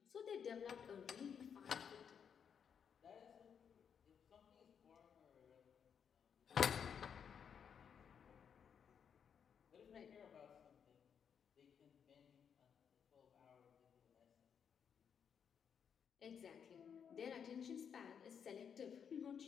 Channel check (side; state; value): right; quieter; 7.4 dB